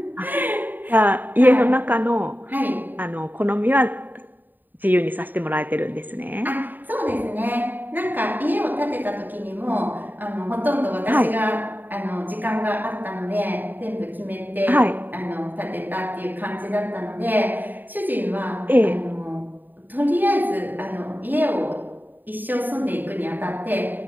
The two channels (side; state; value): left; late; 0.089 ms